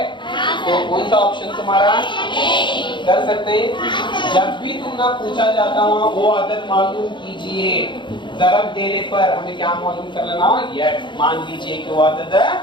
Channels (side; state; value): right; late; 0.23 ms